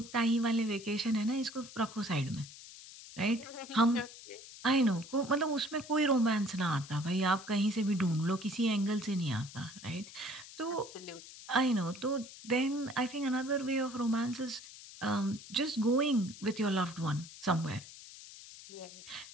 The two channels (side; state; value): left; noise; hiss, 16 dB below the sound